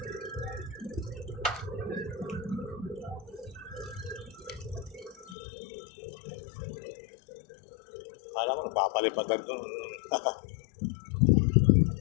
Alam mo, nagpapalipad lang doon.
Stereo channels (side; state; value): right; drops out; at 5.4 s